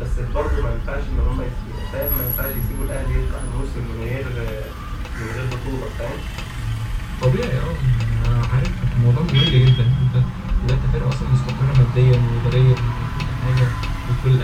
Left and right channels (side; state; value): both; identical; correlation 1.00